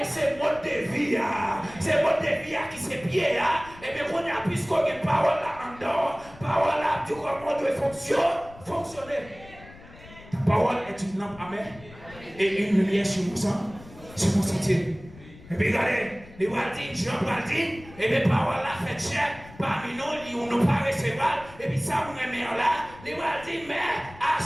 c'est mode de vie. C'est mode de vie qui c'est pied. Et bien, on a plus qu'on a une parole là en dehors. Parole là, tu crois qu'on doit fonctionner. Ta parole est une lampe à mes et une lumière sur mon sang, sur mon sentier. Et puis regardez. Les Waldines, Jean Waldine, et les paroles là fait cher parmi nous, on nous pas recevoir, et puis ça, on est là, les Waldines, mais à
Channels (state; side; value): noise; left; rumble, 20 dB below the sound